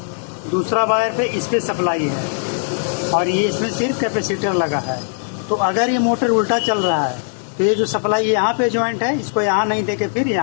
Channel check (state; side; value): silent; right; digital silence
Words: दूसरा वायर पे इस पे सप्लाई है और ये इसमें सिर्फ कैपेसिटर लगा है। तो अगर ये मोटर उल्टा चल रहा है तो ये जो सप्लाई यहाँ पे ज्वाइंट है इसको यहाँ नहीं देके फिर